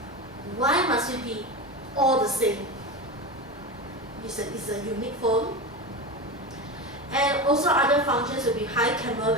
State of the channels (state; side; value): normal; both; correlation 0.22